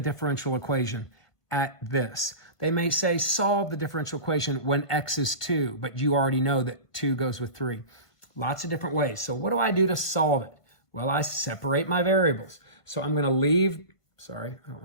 differential equation at this. They may say solve the differential equation when x is 2, but you already know that 2 goes with 3. Lots of different ways. So what do I do to solve it? Well, I separate my variables. So I'm going to leave, sorry, I don't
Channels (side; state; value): right; late; 1.3 ms